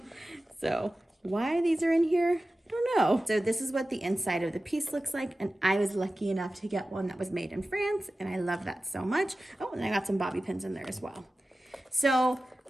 So why these are in here, I don't know. So this is what the inside of the piece looks like, and I was lucky enough to get one that was made in France, and I love that so much. Oh, and I got some bobby pins in there as well. So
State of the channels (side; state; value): both; normal; correlation 0.95